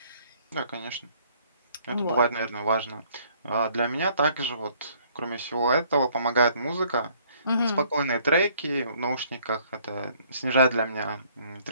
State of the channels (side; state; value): both; inverted; correlation -0.62